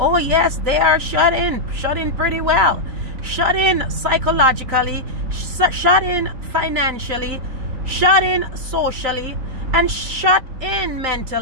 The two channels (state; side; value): late; left; 3.9 ms